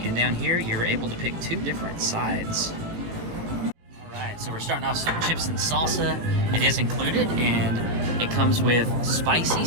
And down here, you're able to pick 2 different sides. So we're starting off some chips and salsa. It is included, and it comes with spicy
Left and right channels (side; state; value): left; late; 18 ms